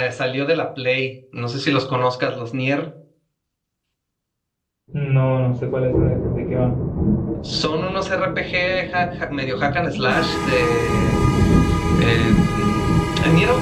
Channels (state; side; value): identical; both; correlation 1.00